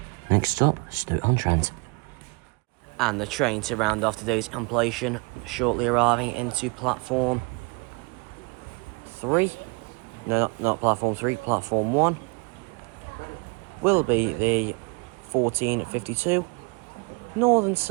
Next stop, Stoke-on-Trent. And the train to round off today's compilation, shortly arriving into platform 3. No, not platform 3, platform 1. Will be the 1452 Northern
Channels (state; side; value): quieter; left; 30.1 dB